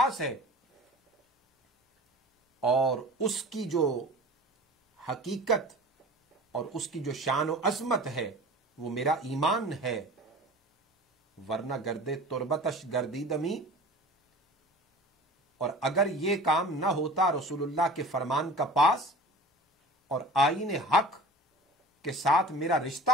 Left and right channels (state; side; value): normal; both; correlation 0.40